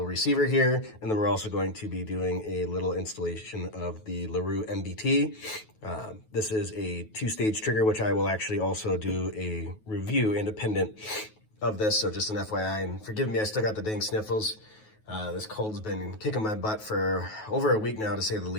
receiver here, and then we're also going to be doing a little installation of the Larue MBT. This is a two-stage trigger, which I will actually also do a review independent of this, so just an FYI, and forgive me, I still got the dang sniffles. This cold's been kicking my butt for over a week now, to say the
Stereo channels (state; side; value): late; right; 9.3 ms